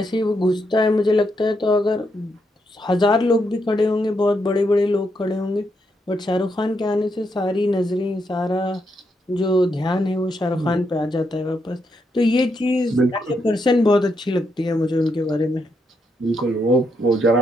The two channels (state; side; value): normal; both; correlation 0.80